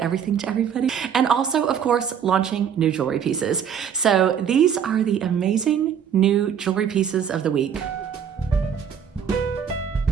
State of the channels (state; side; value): quieter; left; 8.1 dB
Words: to everybody, and also, of course, launching new jewelry pieces. So these are the amazing new jewelry pieces of the week.